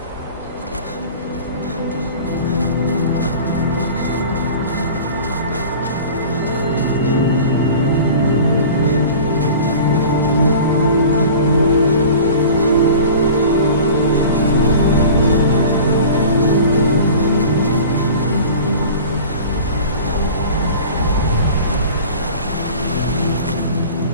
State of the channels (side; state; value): both; inverted; correlation -0.40